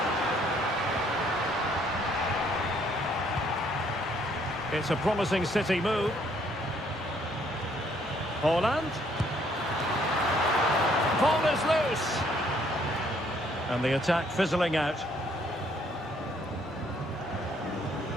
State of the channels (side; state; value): both; normal; correlation 0.66